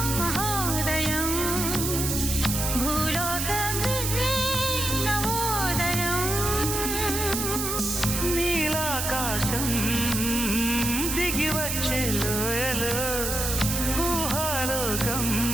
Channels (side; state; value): right; noise; hiss, 2 dB below the sound